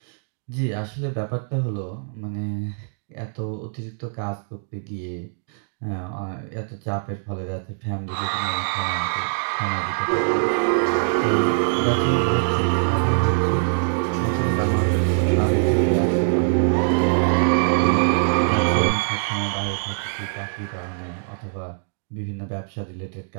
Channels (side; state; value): left; silent; digital silence